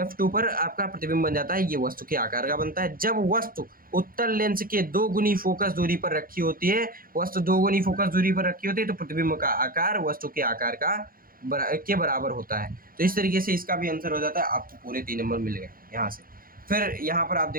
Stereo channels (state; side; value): late; left; 0.42 ms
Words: पर आपका प्रतिबिंब बन जाता है। ये वस्तु के आकार का बनता है। जब वस्तु उत्तल लेंस के 2 गुनी फोकस दूरी पर रखी होती है, वस्तु 2 गुनी फोकस दूरी पर रखी होती है, तो प्रतिबिंब का आकार वस्तु के आकार के बराबर होता है। तो इस तरीके से इसका भी आंसर हो जाता है। आपको पूरे 3 नंबर मिल गए यहाँ से। फिर यहाँ पर आप